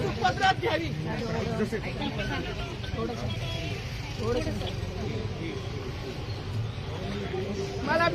पदरात घ्यावी. मला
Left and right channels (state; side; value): identical; both; correlation 1.00